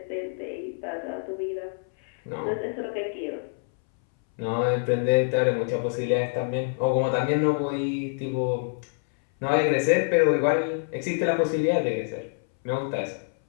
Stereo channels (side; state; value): right; silent; 61 dB below the other